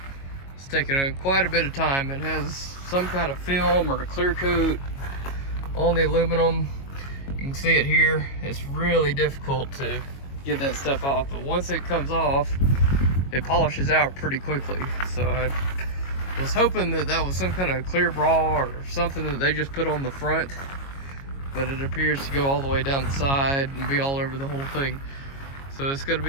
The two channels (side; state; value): right; late; 22 ms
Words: It's taken quite a bit of time. It has some kind of film or a clear coat on the aluminum. You can see it here. It's really difficult to get that stuff off, but once it comes off, it polishes out pretty quickly. So I was hoping that was some kind of clear bra or something that they just put on the front, but it appears to go all the way down the side and be all over the whole thing. So it's going to